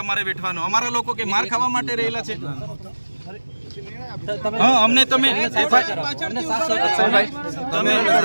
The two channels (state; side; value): inverted; both; correlation -1.00